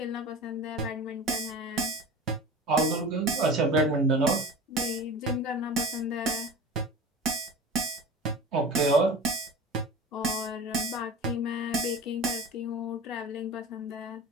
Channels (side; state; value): both; normal; correlation 0.35